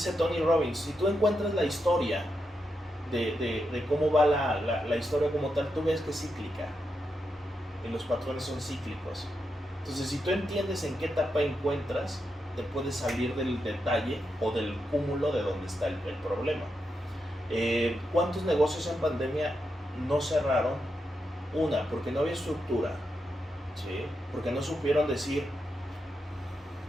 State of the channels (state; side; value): normal; both; correlation 0.85